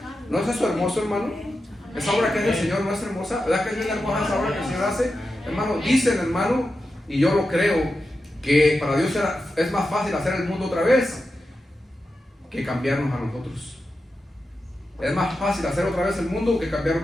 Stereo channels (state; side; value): normal; both; correlation 0.90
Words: ¿No es eso hermoso, hermano? Esa obra que es del Señor no es hermosa. ¿Verdad que es bien hermosa esa obra que el Señor hace? Hermano, dicen, hermano, y yo lo creo, que para Dios es más fácil hacer el mundo otra vez que cambiarnos a nosotros. Es más fácil hacer otra vez el mundo que